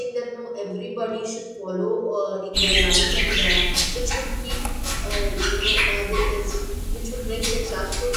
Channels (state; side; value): identical; both; correlation 1.00